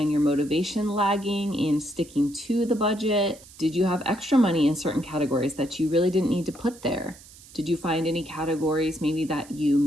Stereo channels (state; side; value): noise; right; hiss, 21 dB below the sound